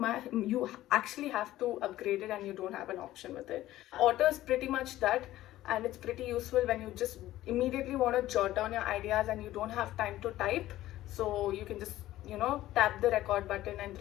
actually have to upgrade it and you don't have an option with it. Otter is pretty much that, and it's pretty useful when you just immediately want to jot down your ideas and you don't have time to type. So you can just tap the record button and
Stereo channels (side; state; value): right; quieter; 14.9 dB